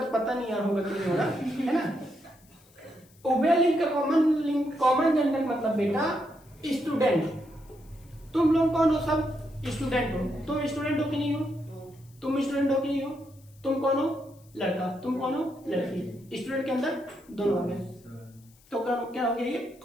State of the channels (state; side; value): noise; left; hiss, 29 dB below the sound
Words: पता नहीं यार होगा कि नहीं होगा, है ना। उभयलिंग का कॉमन जेंडर मतलब बेटा स्टूडेंट। तुम लोग कौन हो? सब स्टूडेंट हो। तुम स्टूडेंट हो कि नहीं हो? तुम स्टूडेंट हो कि नहीं हो? तुम कौन हो? लड़का। तुम कौन हो? लड़की। स्टूडेंट के अंदर दोनों आ गए, तो क्या हो गया ये?